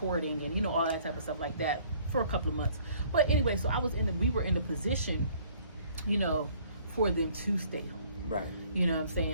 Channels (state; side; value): inverted; both; correlation -0.58